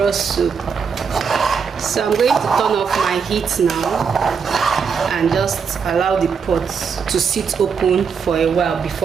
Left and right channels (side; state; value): left; quieter; 6.1 dB